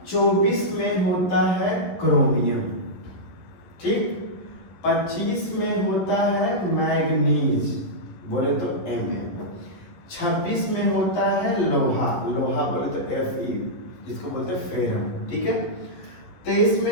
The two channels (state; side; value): late; right; 11 ms